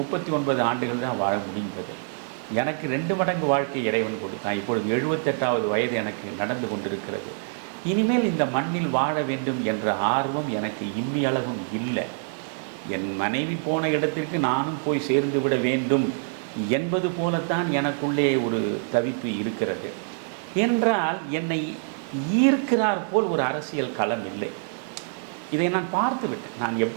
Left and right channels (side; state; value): left; silent; digital silence